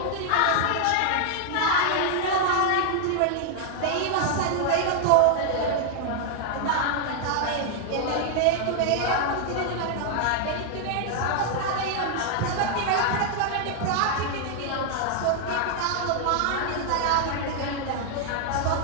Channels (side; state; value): both; different; correlation 0.00